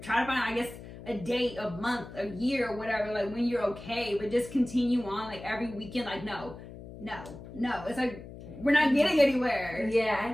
to find, I guess, a date, a month, a year, or whatever, like when you're okay, but just continue on like every weekend. Like, no, it's like we're not getting anywhere. I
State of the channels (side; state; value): left; noise; hum, 14 dB below the sound